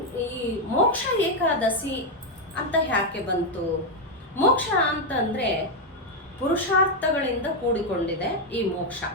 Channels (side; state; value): both; normal; correlation 0.03